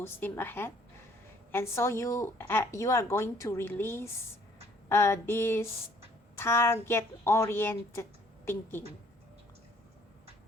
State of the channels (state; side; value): normal; both; correlation 0.61